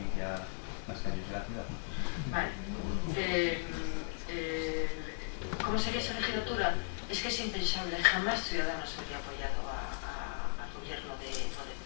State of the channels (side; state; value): right; silent; digital silence